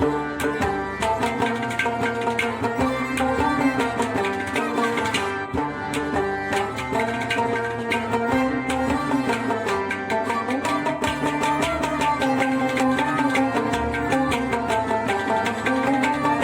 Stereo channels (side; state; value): both; identical; correlation 1.00